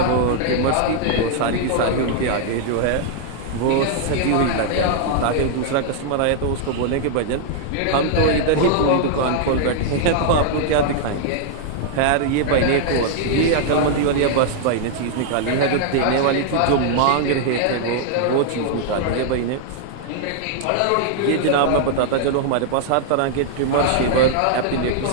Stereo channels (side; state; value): both; different; correlation -0.01